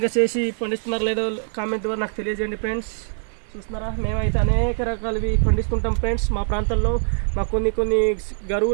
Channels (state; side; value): silent; left; digital silence